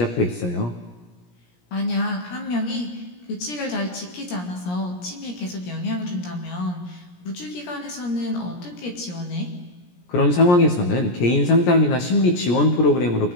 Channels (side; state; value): right; late; 17 ms